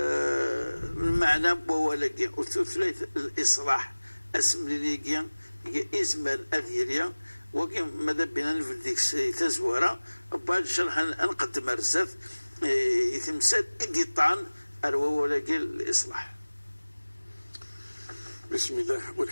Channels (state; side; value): inverted; both; correlation -1.00